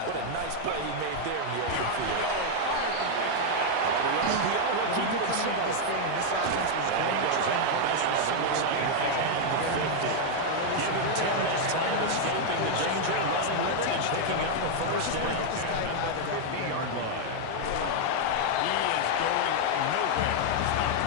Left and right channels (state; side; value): different; both; correlation 0.00